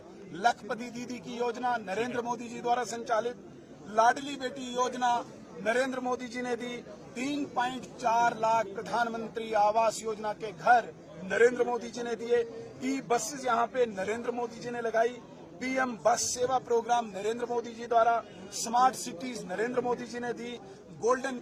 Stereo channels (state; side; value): identical; both; correlation 1.00